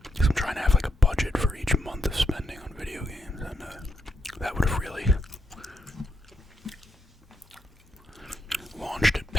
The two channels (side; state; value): both; normal; correlation 0.80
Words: Because I'm trying to have like a budget for each month of spending on video games, and that would have really launched it